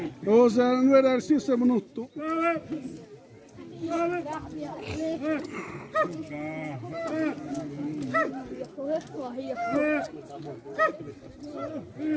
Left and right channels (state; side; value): identical; both; correlation 1.00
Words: Cosa non era il sistema minuto.